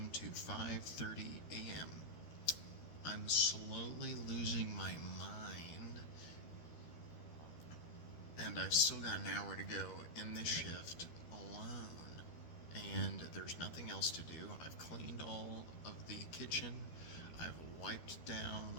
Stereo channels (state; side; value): late; right; 13 ms